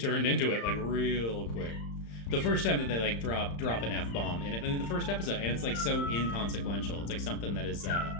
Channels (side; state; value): right; late; 35 ms